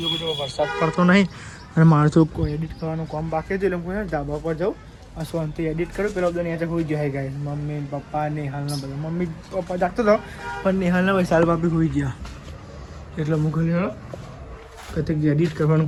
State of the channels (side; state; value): both; identical; correlation 1.00